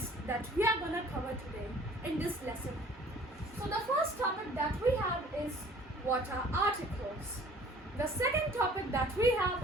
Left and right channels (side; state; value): both; normal; correlation 0.52